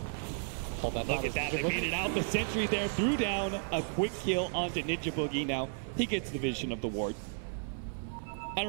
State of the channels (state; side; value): silent; left; 55 dB below the other